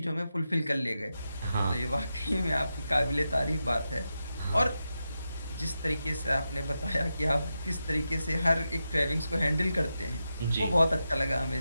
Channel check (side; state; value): both; inverted; correlation -0.89